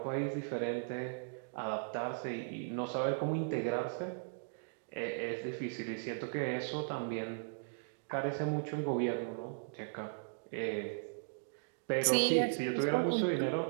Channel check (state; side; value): silent; left; digital silence